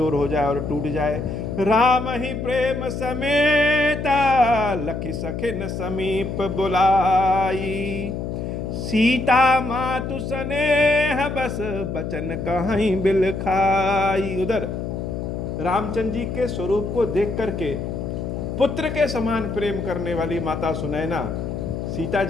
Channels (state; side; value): noise; left; hum, 4 dB below the sound